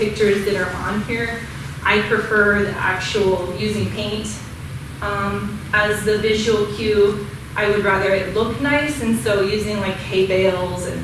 that are on here, I prefer the actual using paint as the visual cue. I would rather it look nice, and so using like hay bales and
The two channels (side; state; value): both; identical; correlation 1.00